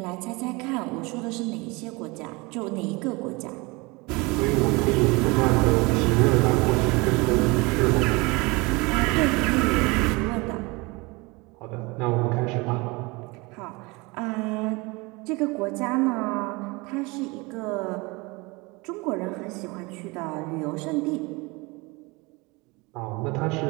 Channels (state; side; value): quieter; left; 25.5 dB